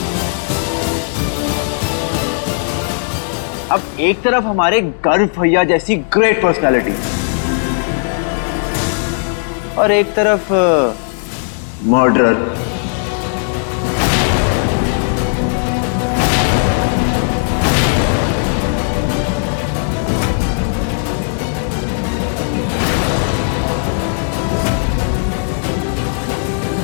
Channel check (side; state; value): right; silent; 67 dB below the other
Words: अब एक तरफ हमारे गर्व भैया जैसी ग्रेट पर्सनालिटी और एक तरफ मर्डरर।